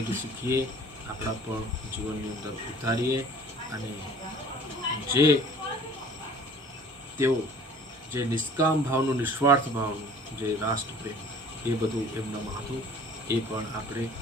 શીખીએ, આપણા પણ જીવનની અંદર ઉતારીએ, અને જે તેઓ જે નિષ્કામ ભાવનું, નિસ્વાર્થ ભાવનું, જે રાષ્ટ્રપ્રેમ, એ બધું એમનામાં હતું. એ પણ આપણે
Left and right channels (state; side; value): normal; both; correlation 0.49